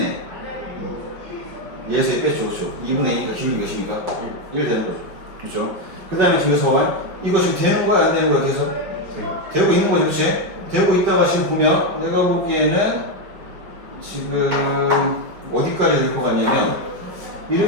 얘에서 뺐죠. 그렇죠? 2분의 2니까 기울기 몇입니까? 1 되는 거죠. 그렇죠? 그 다음에 지금서 봐요. 이거 지금 되는 거야? 안 되는 거야? 그래서? 되고 있는 거죠. 그렇지? 되고 있다가 지금 보면 내가 보기에는 지금 어디까지 될 것 같냐면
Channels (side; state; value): left; late; 5.1 ms